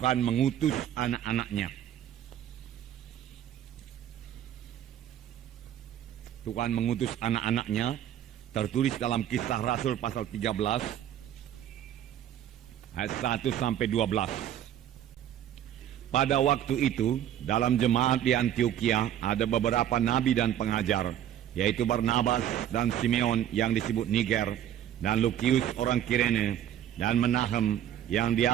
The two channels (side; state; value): left; quieter; 10.9 dB